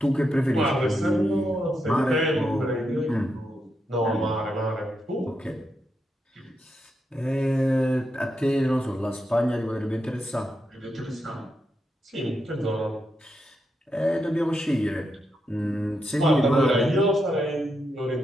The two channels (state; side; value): normal; both; correlation 0.84